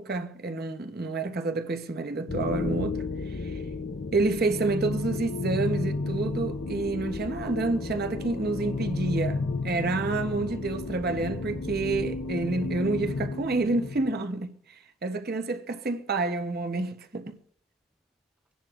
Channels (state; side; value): normal; both; correlation 0.58